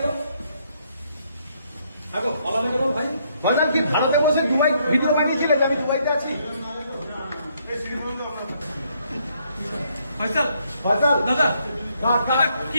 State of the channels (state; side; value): inverted; both; correlation -0.72